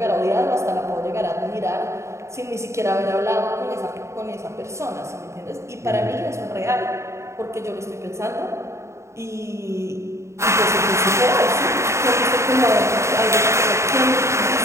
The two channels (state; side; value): late; left; 0.14 ms